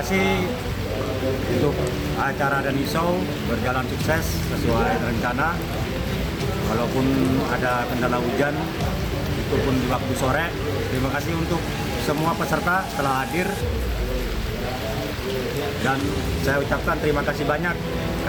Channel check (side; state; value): both; identical; correlation 1.00